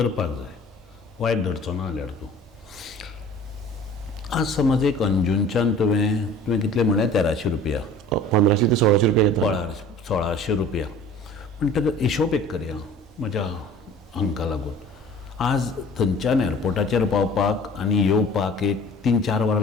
जाय, वायट धरचो ना जाल्यार तूं. आज समज एक अंजूनच्यान तुवें कितले म्हळ्यार 1300 रुपया, 1500 ते 1600 रुपया घेता. 1600 रुपया. पूण ताका हिशोब एक करया म्हज्या हांका लागून. आज थंयच्यान एअरपोर्टाचेर पावपाक आनी येवपाक एक 3-4 वरां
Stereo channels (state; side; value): normal; both; correlation 0.45